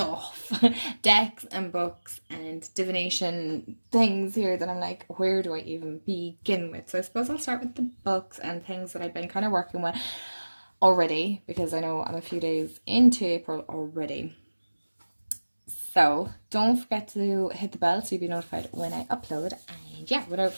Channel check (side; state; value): both; inverted; correlation -1.00